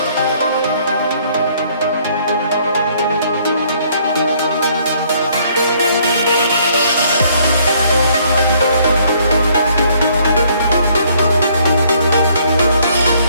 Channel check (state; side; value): inverted; both; correlation -0.64